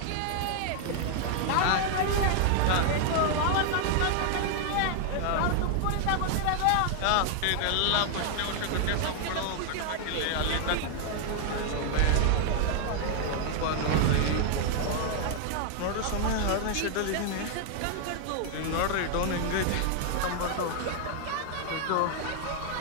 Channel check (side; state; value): both; different; correlation 0.00